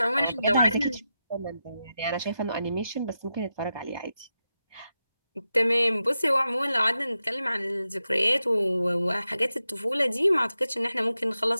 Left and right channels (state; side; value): inverted; both; correlation -0.89